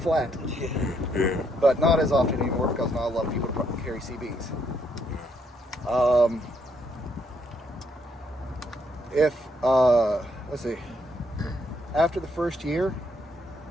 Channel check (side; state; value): both; normal; correlation 0.73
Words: Yeah. But not as often anymore because not a lot of people carry CBs. Let's see, after the first year